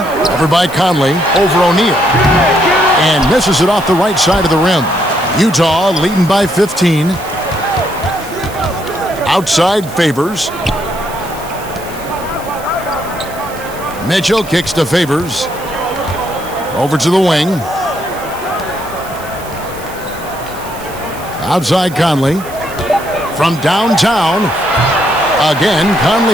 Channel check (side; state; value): right; noise; hiss, 17 dB below the sound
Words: over by Conley over O'Neal. And misses it off the right side of the rim. Utah leading by 15. Outside Favors. Mitchell kicks to Favors. Over to the wing. Outside Conley. From downtown. Again,